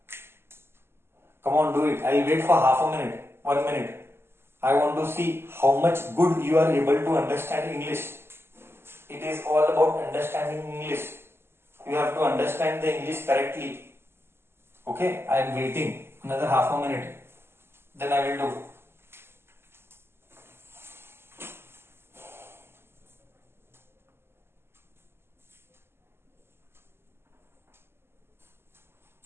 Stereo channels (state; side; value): late; left; 0.12 ms